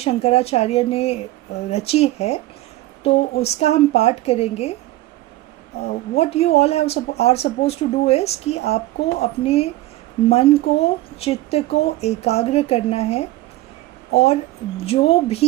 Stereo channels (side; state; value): left; quieter; 17.0 dB